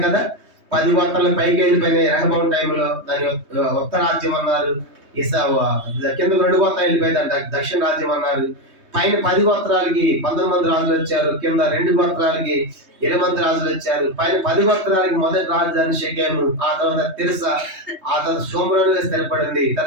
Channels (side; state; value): left; late; 3.2 ms